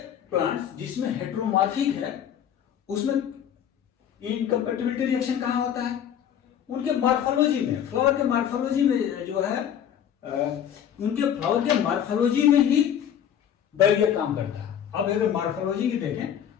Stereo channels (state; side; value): quieter; right; 9.4 dB